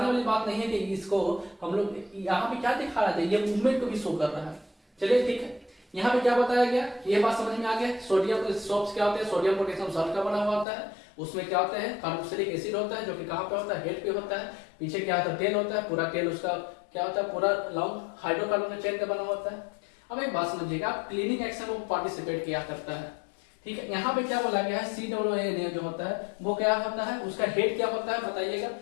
वाली बात नहीं है कि इसको हम लोग यहाँ पे क्या दिखा रहे थे, ये मूवमेंट को भी शो कर रहा है। चलिए ठीक है, यहाँ पे क्या बताया गया, ये बात समझ में आ गया। सोडियम सोप्स क्या होते हैं, सोडियम पोटेशियम सॉल्ट का बना हुआ होता है, उसमें क्या होता है, कार्बोक्सिलिक एसिड होता है, जो कि कहाँ पे होता है, हेड पे होता है। पीछे क्या होता है, टेल होता है, पूरा टेल उसका क्या होता है, पूरा लॉन्ग हाइड्रोकार्बन चेन का बना होता है। अब एक बात समझिएगा, क्लीनिंग एक्शन में पार्टिसिपेट किया करता है, ठीक है। यहाँ पे क्या बोला गया है, COONA जो होता है वो क्या होता है, उसका हेड क्या होता है बताइएगा,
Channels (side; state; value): right; drops out; at 10.7 s